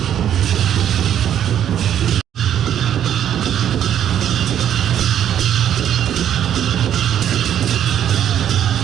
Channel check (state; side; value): quieter; left; 10.1 dB